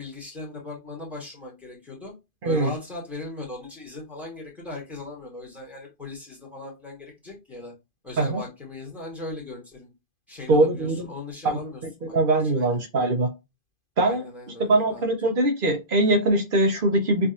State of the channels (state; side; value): late; left; 2.5 ms